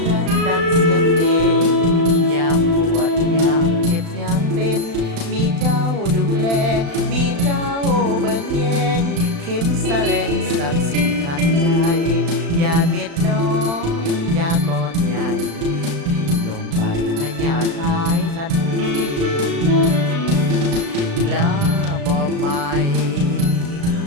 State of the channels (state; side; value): late; left; 35 ms